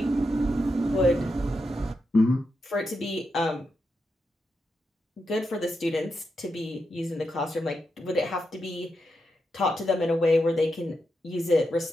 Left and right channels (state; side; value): normal; both; correlation 0.86